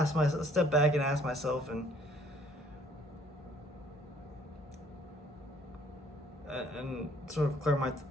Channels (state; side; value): normal; both; correlation 0.60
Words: step back and ask myself and sort of clear